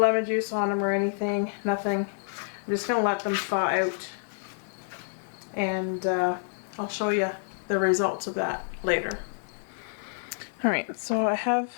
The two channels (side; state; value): right; silent; digital silence